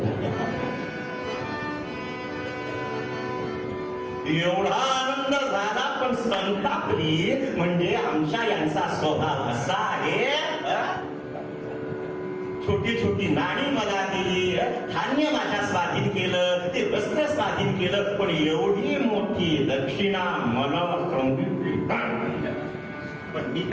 एवढा आनंद झाला, पण संतापली. म्हणजे आमच्या यांचा स्वभाव असा आहे, छोटी छोटी नाणी मला दिली, धान्य माझ्या स्वाधीन केलं, ते वस्त्र स्वाधीन केलं, पण एवढी मोठी दक्षिणा मला सांगितली. पण मी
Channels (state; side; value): identical; both; correlation 1.00